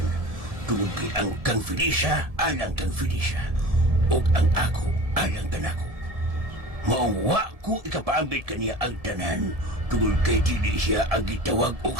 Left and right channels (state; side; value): late; left; 1.7 ms